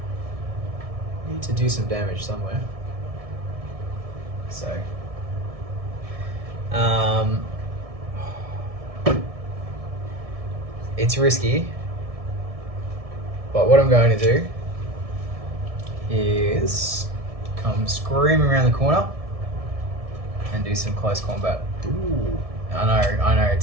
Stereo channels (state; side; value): late; left; 1.6 ms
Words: do some damage somewhere. So it's risky, but what I'm going to do is come screaming around the corner and do some close combat. Ooh. I know,